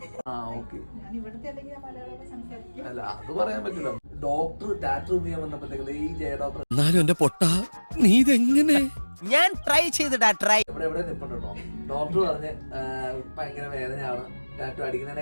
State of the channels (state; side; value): inverted; both; correlation -1.00